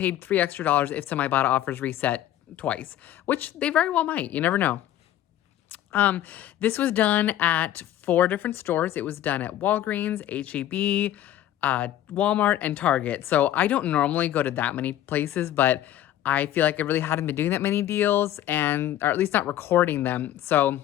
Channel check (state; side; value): quieter; right; 12.6 dB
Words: $3 extra if some Ibotta offers reset twice, which they very well might. You never know. This was done at 4 different stores. It was done at Walgreens, H-E-B, Walmart, and Target. So I don't normally go to that many places, but I feel like I really hadn't been doing that many deals, or at least not recording them. So